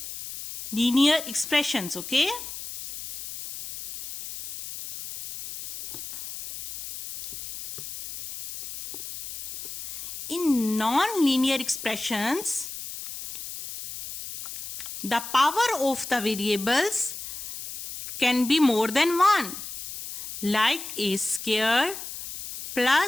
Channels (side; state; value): left; noise; hiss, 10 dB below the sound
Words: expressions, okay? In non-linear expressions, the power of the variables can be more than 1, like A square